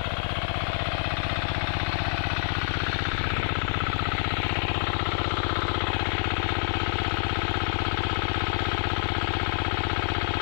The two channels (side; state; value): right; silent; digital silence